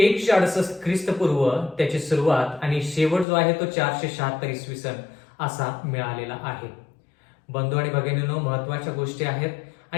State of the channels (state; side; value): drops out; right; at 3.2 s